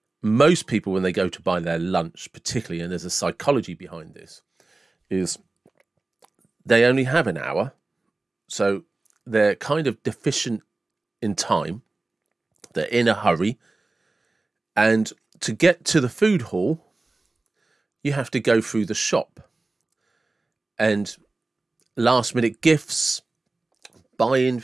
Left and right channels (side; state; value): left; quieter; 3.2 dB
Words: most people, when they go to buy their lunch, particularly, and there's a psychology behind this, is they only have an hour. So they're kind of deficient in time. They're in a hurry. And to get to the food hall, you have to go through the shop. And last minute gifts, buying